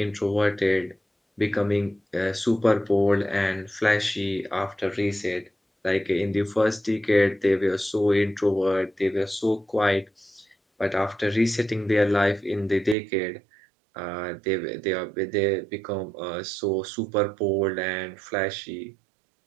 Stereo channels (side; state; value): left; drops out; at 13.0 s